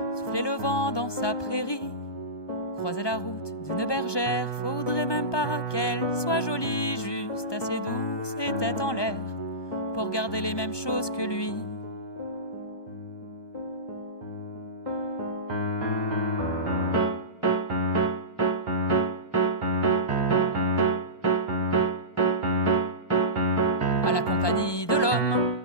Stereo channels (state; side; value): late; right; 1.2 ms